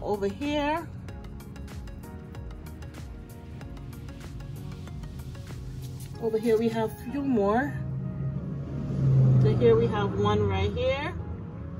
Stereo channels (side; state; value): both; identical; correlation 1.00